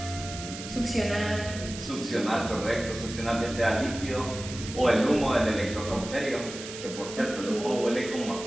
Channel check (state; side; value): noise; right; hiss, 11 dB below the sound